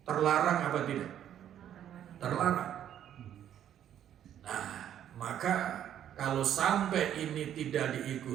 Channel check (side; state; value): left; quieter; 10.4 dB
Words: terlarang apa tidak? Terlarang. Nah, maka kalau sampai ini tidak